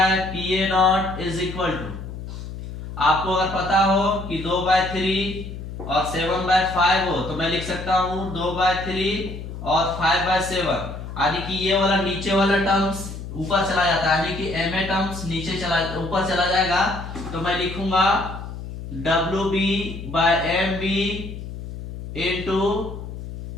PA nought is equal to, आपको अगर पता हो कि 2/3 और 7/5 हो तो मैं लिख सकता हूं 2/3 और 5/7, यानी कि ये वाला नीचे वाला टर्म्स ऊपर चला जाता है, यानी कि MA टर्म्स नीचे ऊपर चला जाएगा। तो मैं लिखूंगा WB by MB into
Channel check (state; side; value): noise; left; hum, 10 dB below the sound